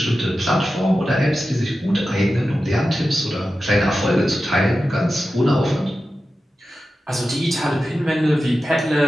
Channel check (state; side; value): normal; both; correlation 0.92